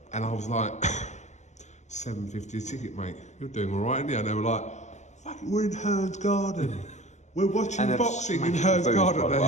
and I was like, $7.50 a ticket, mate. You're doing all right, aren't you? And they were like, fucking, we're in HEARN's garden. We're watching boxing in HEARN's garden.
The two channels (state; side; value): late; right; 0.34 ms